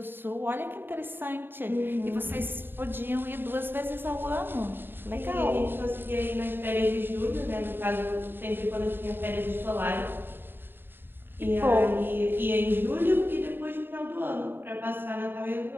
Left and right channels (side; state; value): left; late; 0.099 ms